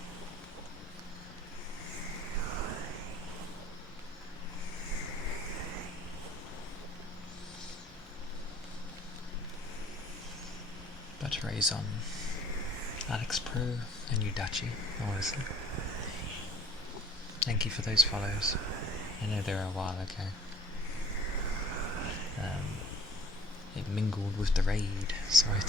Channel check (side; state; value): both; normal; correlation 0.52